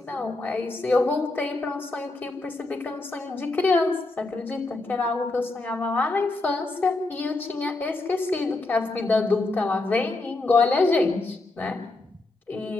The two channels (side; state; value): right; quieter; 3.1 dB